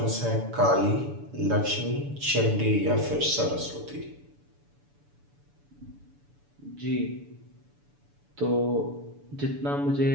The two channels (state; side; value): late; left; 6.9 ms